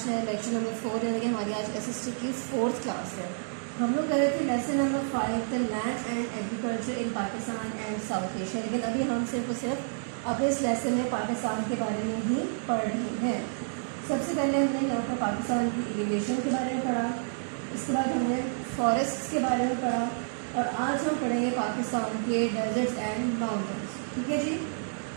है लेक्चर नंबर 4, यानी कि हमारी आज एसएसटी की 4th क्लास है। हम लोग कर रहे थे lesson number 5 the land and agriculture in Pakistan and south Asia, लेकिन अभी हम सिर्फ और सिर्फ अपने इस लेसन में पाकिस्तान के बारे में ही पढ़ रहे हैं। सबसे पहले हमने यहाँ पर पाकिस्तान की एलिवेशन के बारे में पढ़ा, इसके बाद हमने फॉरेस्ट के बारे में पढ़ा, और आज हम पढ़ेंगे पाकिस्तान के डेजर्ट्स एंड माउंटेन्स, ठीक है जी।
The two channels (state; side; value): silent; left; digital silence